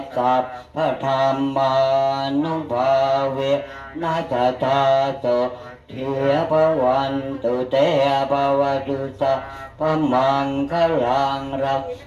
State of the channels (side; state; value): both; identical; correlation 1.00